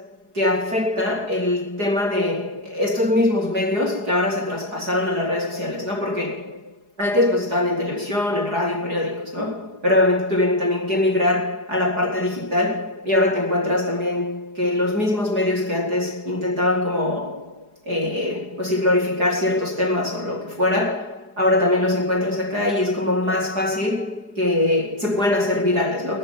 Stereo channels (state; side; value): late; left; 4.8 ms